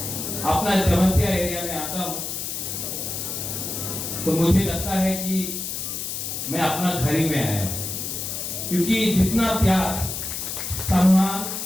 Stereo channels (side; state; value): left; noise; hiss, 5 dB below the sound